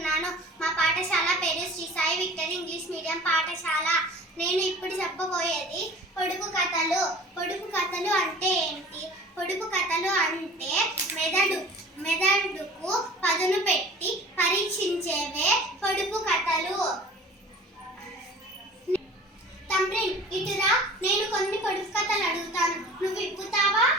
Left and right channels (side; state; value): both; normal; correlation 0.43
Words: మా పాఠశాల పేరు Shri Sai victory English medium పాఠశాల. నేను ఇప్పుడు చెప్పబోయేది పొడుపు కథలు. పొడుపు కథలు అంటే ఏంటి? పొడుపు కథలు అంటే మెదడుకు పదును పెట్టి పరీక్షించేవే పొడుపు కథలు. తండ్రిన్ ఇటురా, నేను కొన్ని పొడుపు కథలు అడుగుతాను, నువ్వు విప్పుతావా?